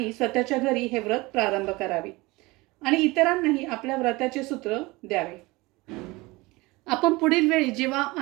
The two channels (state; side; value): quieter; left; 22.5 dB